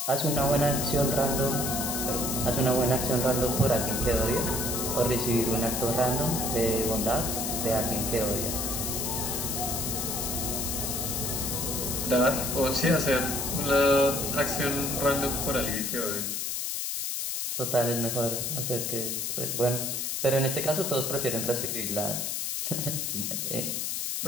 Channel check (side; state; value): left; noise; hiss, 1 dB below the sound